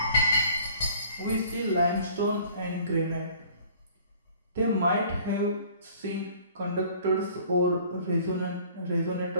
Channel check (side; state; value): both; inverted; correlation -0.53